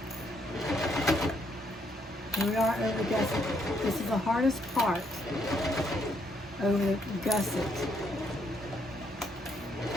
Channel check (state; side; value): normal; both; correlation 0.72